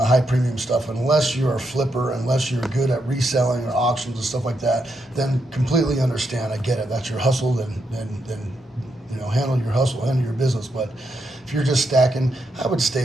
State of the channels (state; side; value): normal; both; correlation 0.81